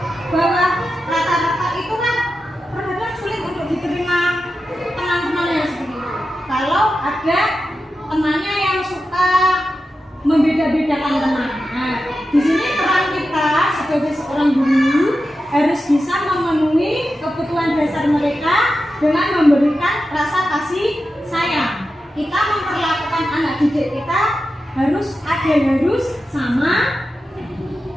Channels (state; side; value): normal; both; correlation 0.91